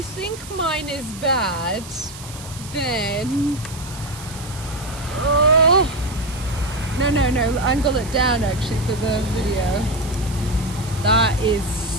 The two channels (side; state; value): right; noise; hiss, 15 dB below the sound